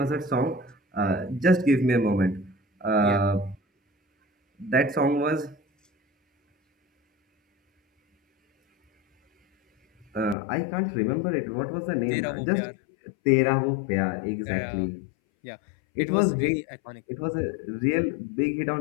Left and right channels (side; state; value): right; drops out; at 10.4 s